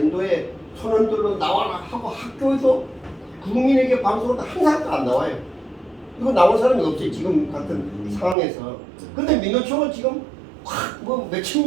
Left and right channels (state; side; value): drops out; left; at 8.3 s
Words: 선언들로 나와라 하고 학교에서 국민에게 방송을 항상 안 나와요. 이거 나온 사람이 없지 지금 같은 상황에서. 근데 민노총은 지금 뭐 몇천